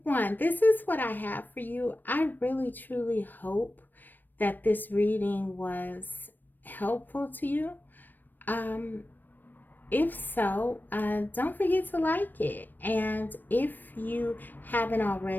1, this is what I have for you. I really, truly hope that this reading was helpful to you. If so, don't forget to like it. And if you haven't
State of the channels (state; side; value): late; right; 0.091 ms